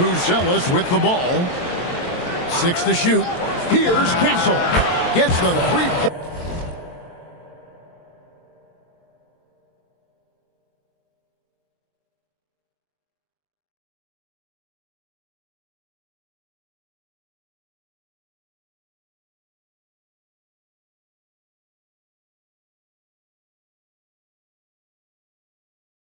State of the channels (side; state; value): right; late; 23 ms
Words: with the ball. 6 to shoot. Here's Castle. Gets the 3-point.